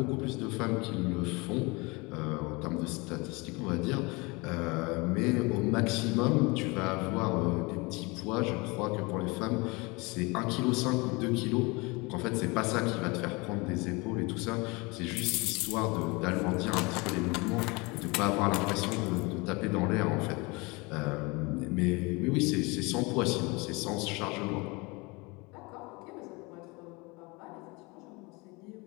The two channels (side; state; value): right; quieter; 26.4 dB